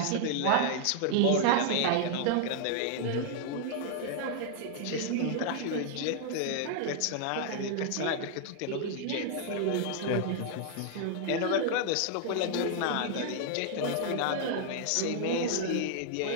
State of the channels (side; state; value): both; different; correlation -0.01